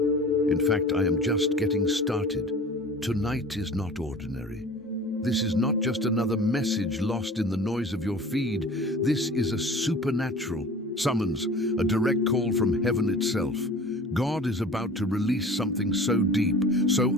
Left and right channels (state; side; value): normal; both; correlation 0.42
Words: In fact, I am just getting started. Tonight is not ordinary. This is not just another message lost in the noise of your feed. This is a supernatural summons, a direct call from heaven itself. God is about to release something so deep, so